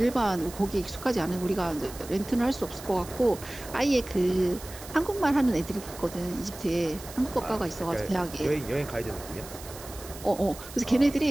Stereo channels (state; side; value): noise; right; hiss, 15 dB below the sound